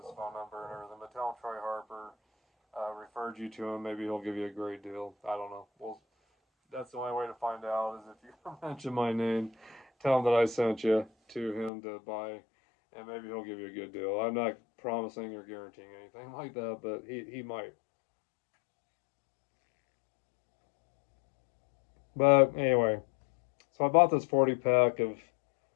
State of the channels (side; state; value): right; drops out; at 11.7 s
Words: phone number and everything. But tell him Troy Harper referred you to him. Maybe he'll give you a great deal. I don't know. Well, that's the only way to find out is if you mention my name. Tell him that I sent you to him to buy, and maybe he'll give you a good deal. I'm not promising or guaranteeing anything like that, but he might. But anyway, so I bought this 40 pack of